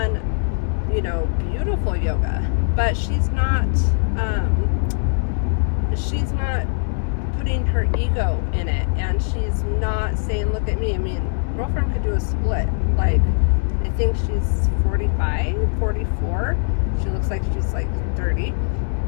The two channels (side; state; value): right; silent; 65 dB below the other